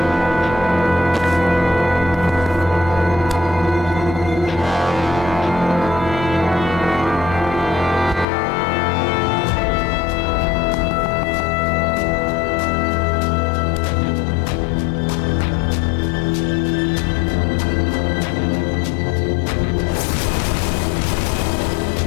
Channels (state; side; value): drops out; right; at 8.2 s